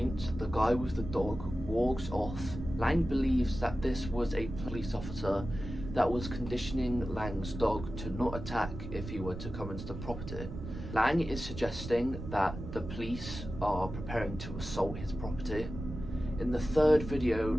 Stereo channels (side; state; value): right; noise; rumble, 9 dB below the sound